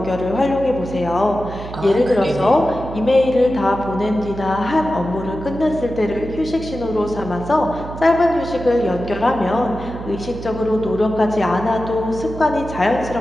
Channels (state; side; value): noise; right; hum, 11 dB below the sound